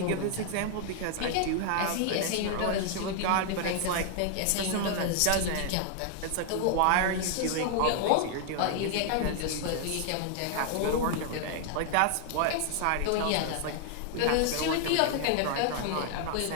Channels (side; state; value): both; different; correlation 0.00